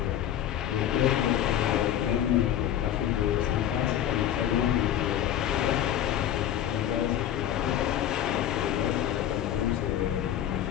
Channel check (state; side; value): quieter; right; 11.0 dB